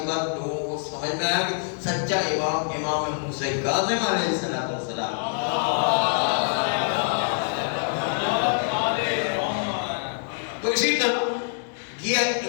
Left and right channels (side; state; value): right; silent; digital silence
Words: بعد لوگوں کو سمجھ میں آیا کہ سچا امام امام موسیٰ کاظم علیہ السلام۔ تو اسی طرح یہ